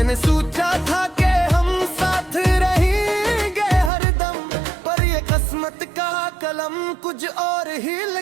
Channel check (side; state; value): left; drops out; at 3.9 s